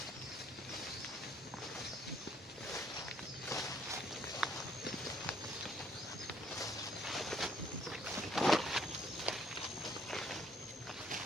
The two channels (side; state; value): both; normal; correlation 0.65